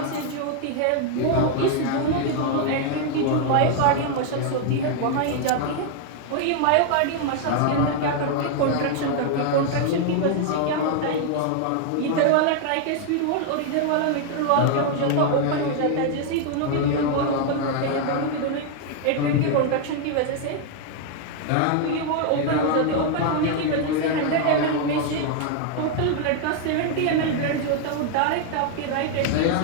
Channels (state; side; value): different; both; correlation 0.00